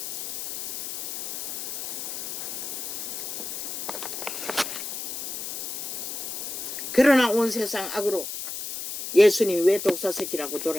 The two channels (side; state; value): left; noise; hiss, 5 dB below the sound